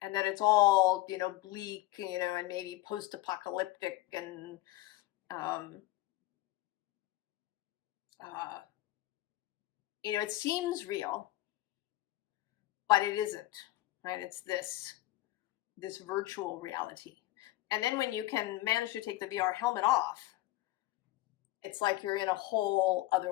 And that it's all, you know, bleak, you know, and maybe post-apocalyptic and you know, it seems real, but it isn't, right? It's this virtual reality. And then when you can manage to take the VR helmet off, it's like you're in a whole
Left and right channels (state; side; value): quieter; right; 17.1 dB